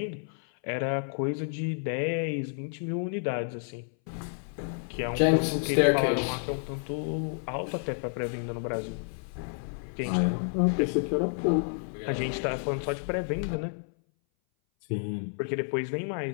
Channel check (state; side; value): silent; right; 58 dB below the other